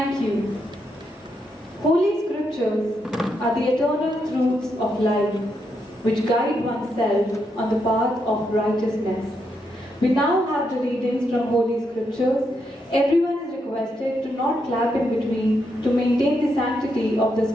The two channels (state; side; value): normal; both; correlation 0.81